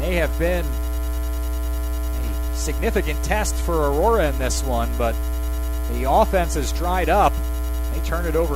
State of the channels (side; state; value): both; identical; correlation 1.00